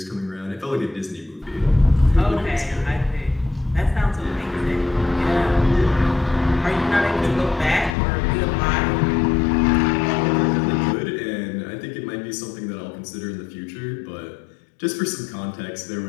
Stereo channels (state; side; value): drops out; right; at 8.0 s